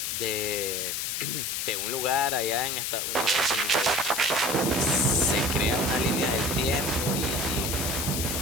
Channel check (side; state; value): left; noise; hiss, 1 dB below the sound